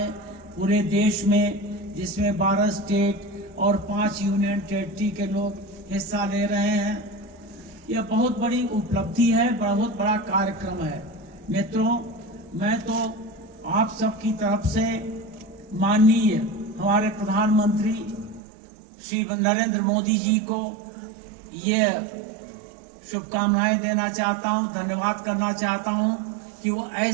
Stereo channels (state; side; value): drops out; left; at 18.4 s